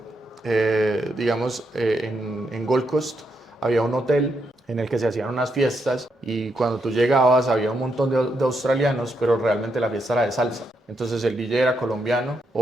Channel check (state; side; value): normal; both; correlation 0.80